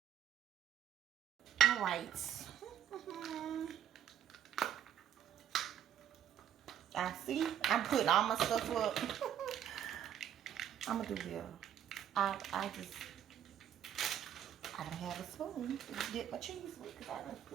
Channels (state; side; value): quieter; left; 9.9 dB